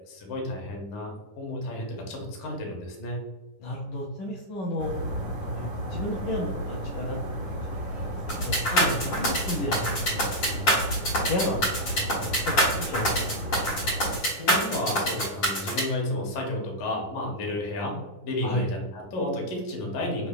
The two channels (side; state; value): right; late; 10 ms